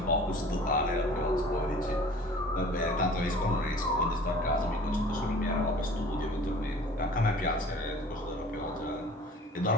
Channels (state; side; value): normal; both; correlation 0.47